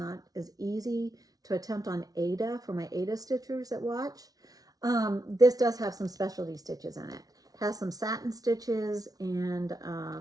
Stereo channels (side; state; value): left; late; 0.18 ms